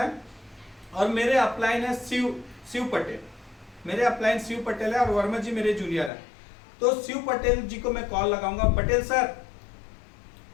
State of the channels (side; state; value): right; drops out; at 6.1 s